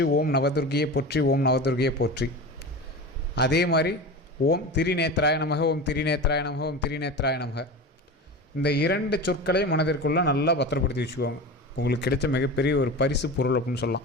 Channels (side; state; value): both; normal; correlation 0.29